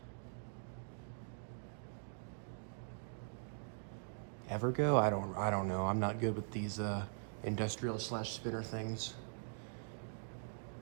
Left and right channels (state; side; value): silent; left; digital silence